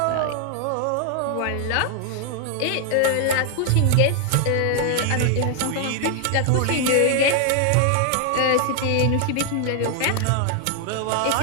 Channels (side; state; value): both; different; correlation 0.00